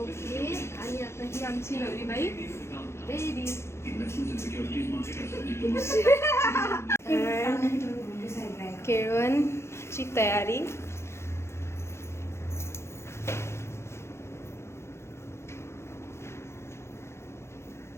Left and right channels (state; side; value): late; right; 0.13 ms